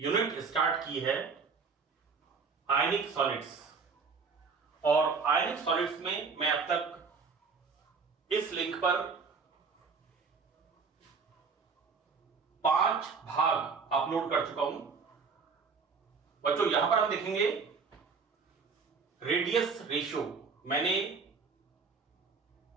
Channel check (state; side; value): quieter; left; 5.0 dB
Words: स्टार्ट की है आयनिक सॉलिड्स। और आयनिक सॉलिड्स में मैं अब तक इस लिंक पर 5 भाग अपलोड कर चुका हूं। बच्चों, यहां पर हम देखेंगे रेडियस रेशियो। मैंने